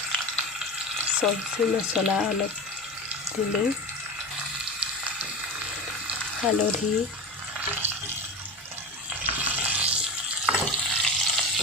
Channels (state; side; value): normal; both; correlation 0.26